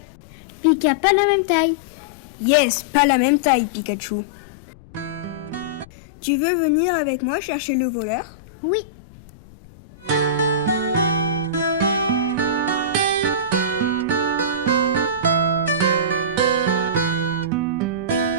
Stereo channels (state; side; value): noise; left; rumble, 22 dB below the sound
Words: Pika, pas la même taille. Yes, pas la même taille, Pikachu. Tu veux venir avec moi chercher le voleur? Oui.